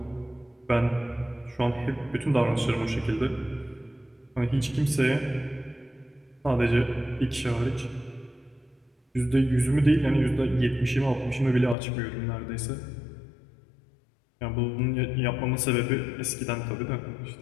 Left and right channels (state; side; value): drops out; right; at 11.8 s